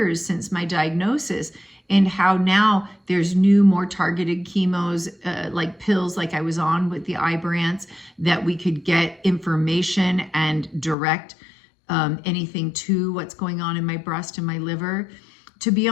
since my diagnosis, and how now there's new, more targeted chemos, like pills like I was on with the Ibrance, that we could get information and direct anything to what's going on in my breast and my liver. To be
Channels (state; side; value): drops out; right; at 11.0 s